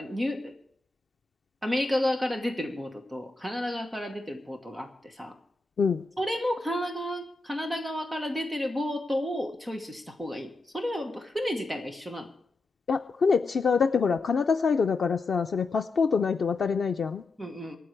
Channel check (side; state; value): right; quieter; 3.4 dB